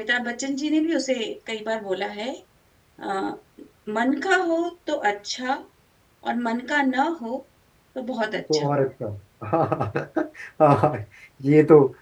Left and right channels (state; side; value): identical; both; correlation 1.00